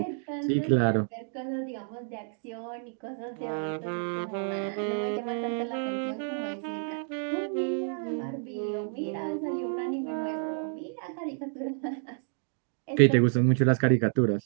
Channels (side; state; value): left; silent; 58 dB below the other